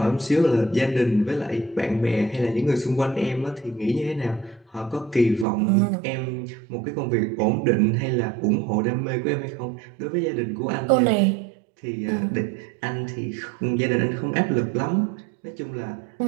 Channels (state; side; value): drops out; left; at 5.5 s